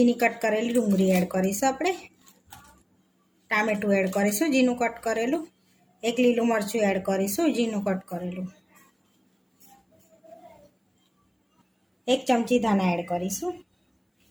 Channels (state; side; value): identical; both; correlation 1.00